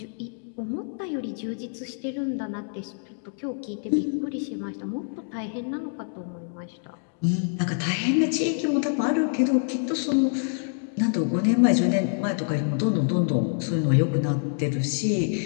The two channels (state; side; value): silent; right; digital silence